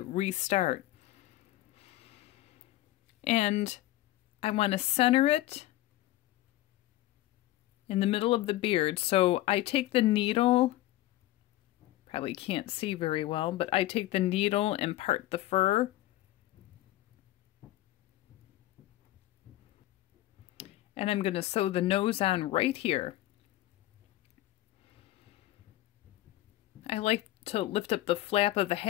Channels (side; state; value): right; quieter; 16.0 dB